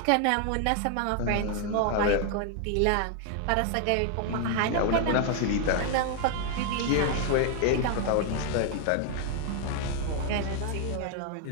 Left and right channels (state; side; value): different; both; correlation 0.00